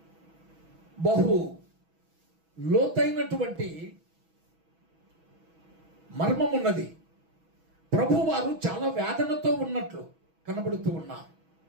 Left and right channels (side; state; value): left; late; 6.2 ms